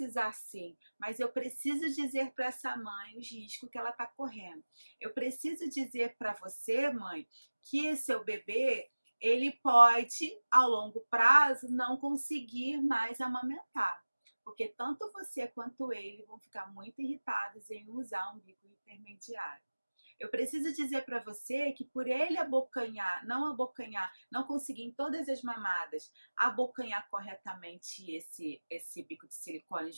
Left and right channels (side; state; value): both; inverted; correlation -1.00